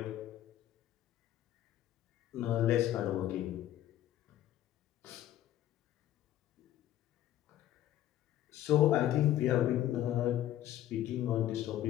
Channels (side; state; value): right; quieter; 12.7 dB